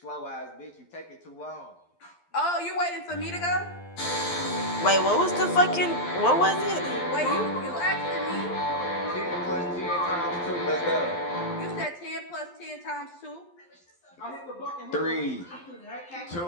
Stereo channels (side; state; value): right; late; 12 ms